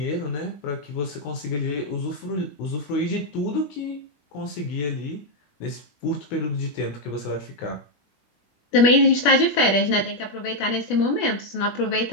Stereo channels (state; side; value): late; right; 21 ms